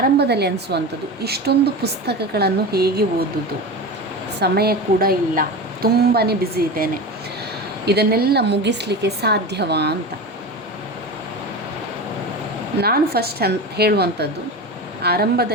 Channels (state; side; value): normal; both; correlation 0.27